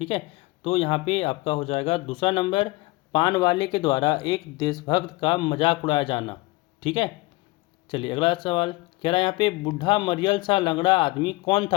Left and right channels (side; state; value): right; quieter; 22.0 dB